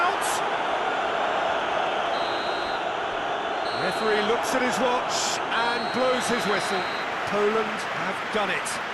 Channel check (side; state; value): both; identical; correlation 1.00